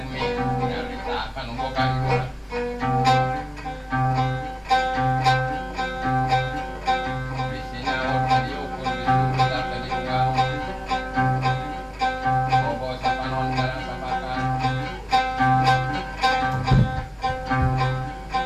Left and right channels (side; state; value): both; identical; correlation 1.00